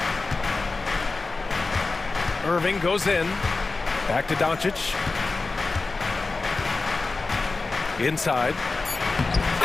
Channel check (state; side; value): quieter; right; 3.7 dB